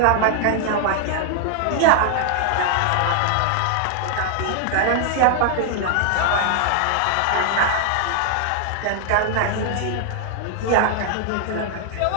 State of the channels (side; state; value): both; different; correlation 0.00